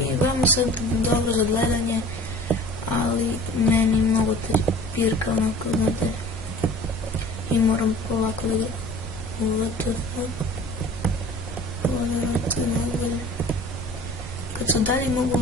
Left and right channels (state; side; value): normal; both; correlation 0.44